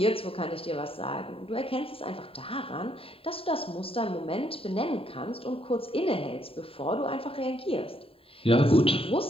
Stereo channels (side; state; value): right; late; 0.27 ms